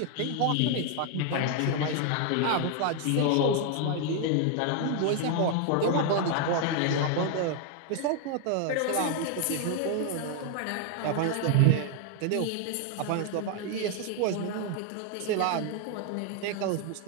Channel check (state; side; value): different; both; correlation 0.00